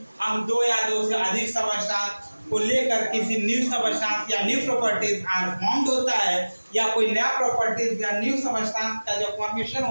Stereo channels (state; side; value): inverted; both; correlation -1.00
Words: हम 2 या 2 से अधिक सबस्टेंस को लेकर किसी न्यू सबस्टेंस या न्यू प्रॉपर्टीज आर फॉर्म्ड होता है, या कोई नया प्रॉपर्टीज या न्यू सबस्टेंस का जो फॉर्मेशन